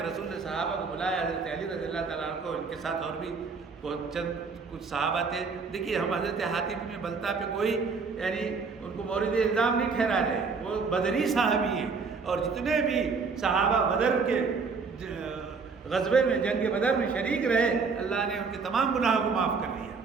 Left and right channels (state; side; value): quieter; left; 4.9 dB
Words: رسول نے صحابہ کو بلایا، حضرت علی رضی اللہ تعالیٰ عنہ کو، ان کے ساتھ اور بھی کچھ صحابہ تھے۔ دیکھیے ہم حضرت حاطب بن بلتع پہ کوئی یعنی ان کو مورد الزام نہیں ٹھہرا رہے، وہ بدری صحابی ہیں، اور جتنے بھی صحابہ بدر کے غزوے میں جنگ بدر میں شریک رہے اللہ نے ان کے تمام گناہوں کو معاف کر دیا۔